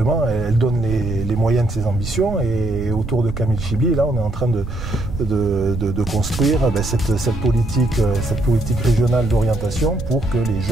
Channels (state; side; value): noise; right; rumble, 8 dB below the sound